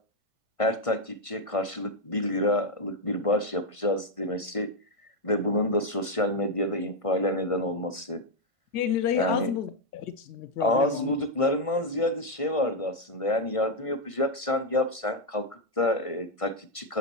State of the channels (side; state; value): right; late; 1.5 ms